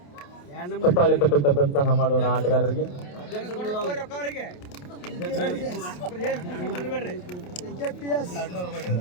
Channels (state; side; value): late; right; 28 ms